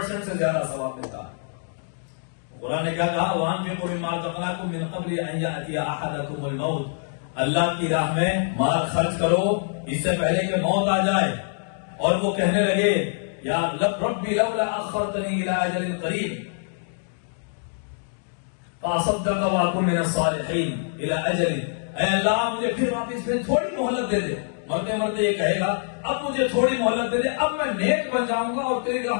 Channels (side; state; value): right; silent; digital silence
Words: سے زیادہ ثواب ملتا ہے. قرآن نے کیا کہا، وَأَنفِقُوا مِمَّا رَزَقْنَاكُم مِّن قَبْلِ أَن يَأْتِيَ أَحَدَكُمُ الْمَوْتُ، اللہ کی راہ میں مال خرچ کرو اس سے پہلے کہ موت آ جائے اور وہ کہنے لگے یا ربی لولا اخرتنی الى اجل قریب فاصدق واکن من الصالحین الى اجل، اے اللہ مجھے پھر واپس میں تھوڑی مہلت دے دے. مرتے مرتے یہ کہے گا اب مجھے تھوڑی مہلت دے دے، اب میں نیک بن جاؤں گا اور تیری